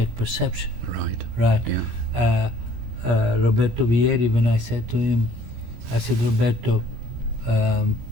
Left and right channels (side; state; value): left; late; 17 ms